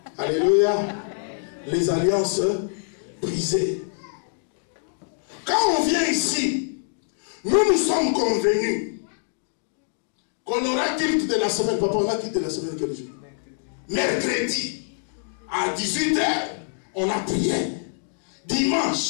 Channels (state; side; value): silent; right; digital silence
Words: Alléluia. Les alliances brisées. Quand on vient ici, nous sommes convenus qu'on aura culte de la semaine. Papa, on a culte de la semaine quel jour? Mercredi. À 18h, on a prié.